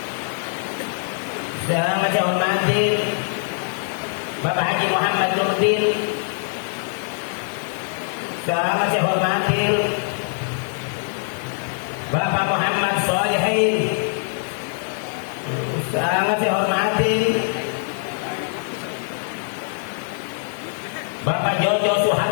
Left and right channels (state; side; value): silent; right; digital silence